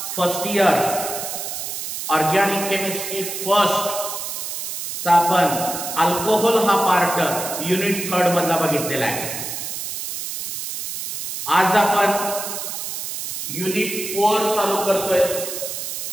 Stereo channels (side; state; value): right; noise; hiss, 6 dB below the sound